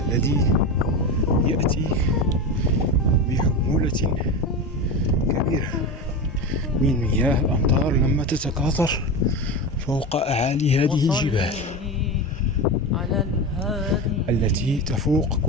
يأتي بحمولة كبيرة من مياه الأمطار لما تتكاثر فوق أعالي هذه الجبال التي تفوق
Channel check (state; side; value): normal; both; correlation 0.22